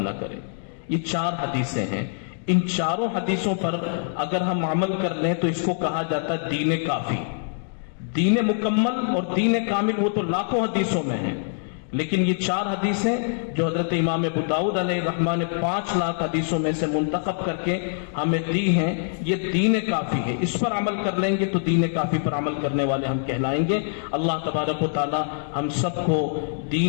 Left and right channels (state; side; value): silent; right; digital silence